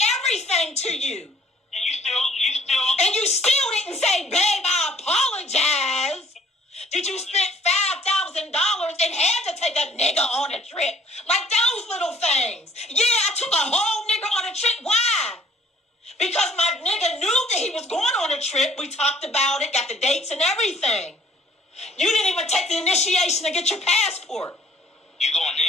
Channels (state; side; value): normal; both; correlation 0.58